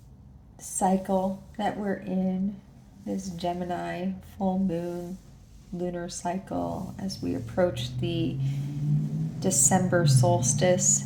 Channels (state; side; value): identical; both; correlation 1.00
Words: cycle that we're in? This Gemini full moon lunar cycle as we approach the December solstice.